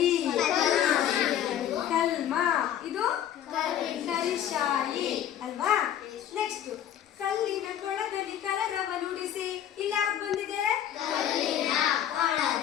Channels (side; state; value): right; quieter; 10.6 dB